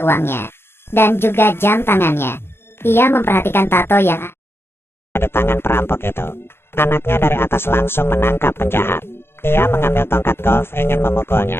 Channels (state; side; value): late; right; 0.11 ms